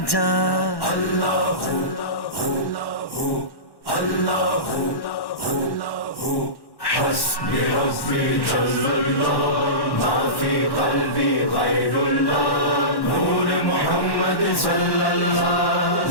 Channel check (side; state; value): right; late; 1.1 ms